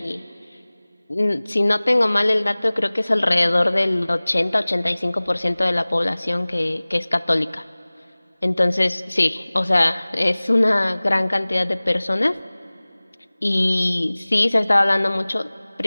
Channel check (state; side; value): inverted; both; correlation -1.00